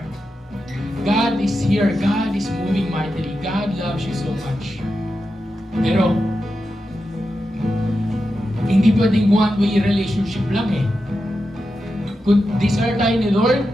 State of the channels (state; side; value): normal; both; correlation 0.89